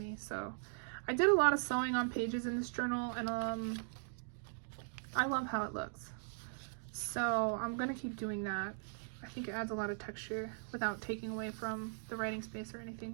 So I did a lot of sewing on pages in this journal, and I love how it looks. So I'm gonna keep doing that. I think it adds a lot of texture without taking away from the writing space or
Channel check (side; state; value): left; silent; digital silence